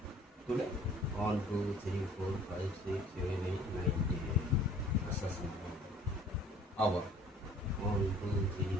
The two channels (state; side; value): normal; both; correlation 0.53